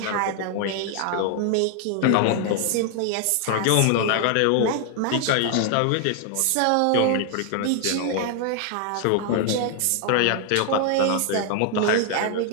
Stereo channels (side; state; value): both; different; correlation 0.00